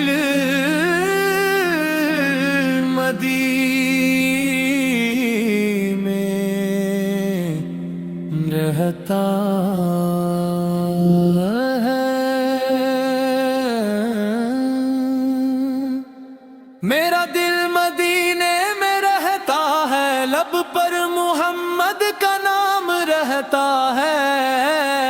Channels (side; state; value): both; identical; correlation 1.00